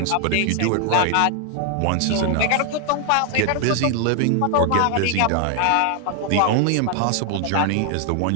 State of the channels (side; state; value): both; different; correlation 0.00